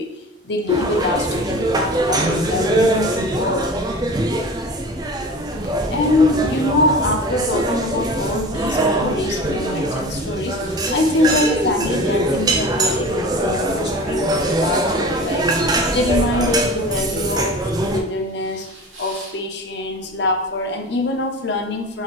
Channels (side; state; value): both; normal; correlation 0.36